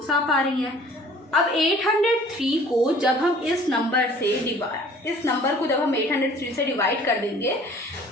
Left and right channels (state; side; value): normal; both; correlation 0.51